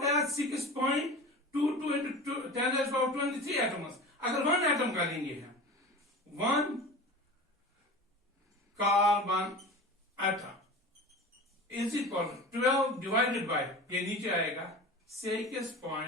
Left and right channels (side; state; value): both; normal; correlation 0.34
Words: 6.22 into 10 raised power 23 एटम्स। अगर 1 एटम का लेंगे हम 1 carbon atom is equal to 12 divided by, ये नीचे आएगा